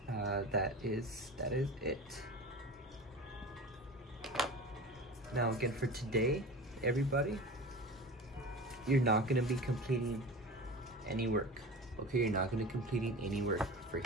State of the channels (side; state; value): both; normal; correlation 0.33